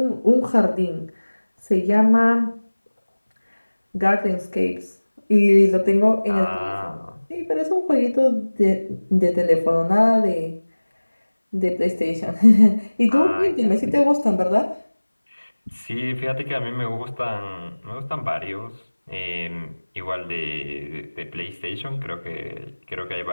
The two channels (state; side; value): inverted; both; correlation -1.00